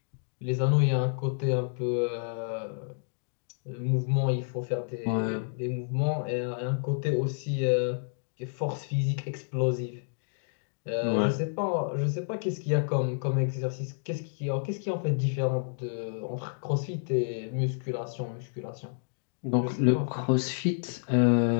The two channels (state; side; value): silent; right; digital silence